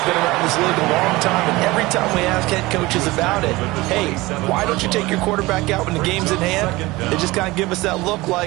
been around this league a long time, and every time we ask head coaches about it, hey, why don't you take your quarterback out when the game's in hand? They just kind of give us that look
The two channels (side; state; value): left; quieter; 20.6 dB